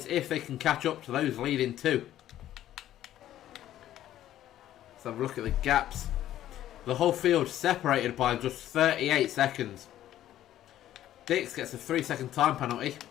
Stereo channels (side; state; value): right; quieter; 12.6 dB